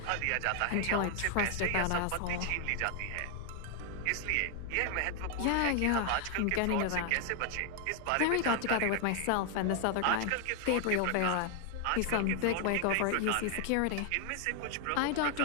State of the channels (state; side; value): different; both; correlation 0.00